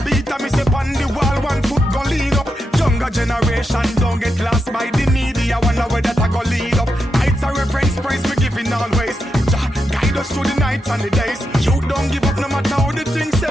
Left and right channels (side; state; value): both; normal; correlation 0.85